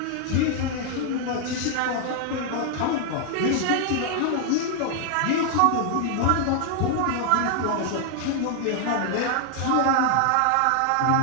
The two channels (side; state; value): both; different; correlation 0.00